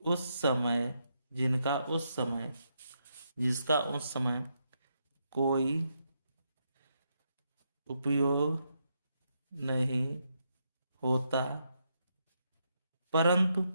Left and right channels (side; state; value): both; inverted; correlation -0.80